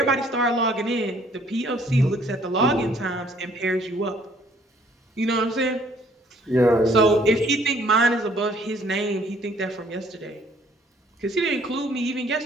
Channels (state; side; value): normal; both; correlation 0.61